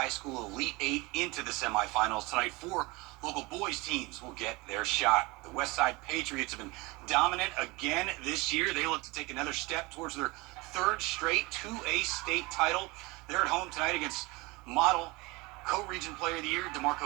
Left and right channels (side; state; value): left; quieter; 24.3 dB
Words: School Elite Eight into the semifinals. Tonight, 4 local boys teams will get their shot. The Westside Patriots have been dominant again this year. They look to take another step towards their 3rd straight 2A state title. They're at home tonight against Model. Co-Region Player of the Year,